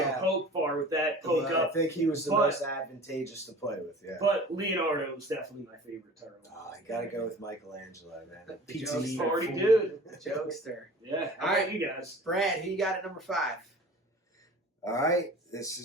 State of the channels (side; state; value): both; normal; correlation 0.42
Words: poke far with that, poke up. I think he was the most advantageous to play with, But Leonardo was definitely my favorite turtle. I gotta go with Michelangelo, man. The Pizza party dude. Jokester. Yeah. All right, you guys. Brad, who you got at number 5? All right, this